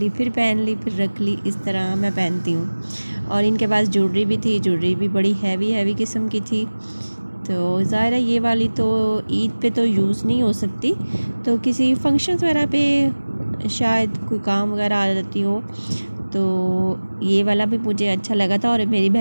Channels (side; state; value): both; inverted; correlation -1.00